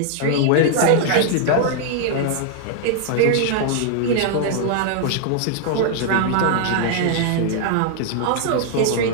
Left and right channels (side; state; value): both; different; correlation -0.01